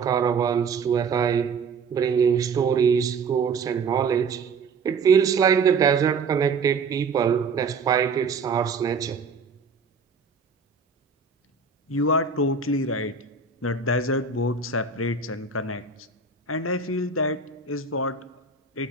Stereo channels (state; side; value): quieter; left; 4.9 dB